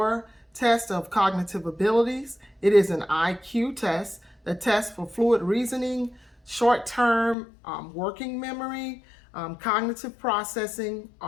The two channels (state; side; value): drops out; right; at 7.4 s